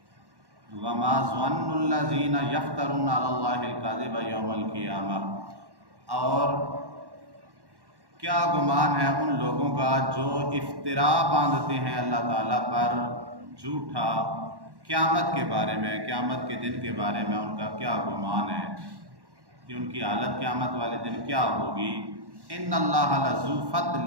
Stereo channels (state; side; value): late; left; 1.1 ms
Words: وما ظن الذین یفترون علی اللہ الکذب یوم القیامہ، اور کیا گمان ہے ان لوگوں کا جو افترا باندھتے ہیں اللہ تعالیٰ پر جھوٹا قیامت کے بارے میں، قیامت کے دن کے بارے میں ان کا کیا گمان ہے کہ ان کی حالت قیامت والے دن کیا ہوگی؟ ان اللہ لذو فضل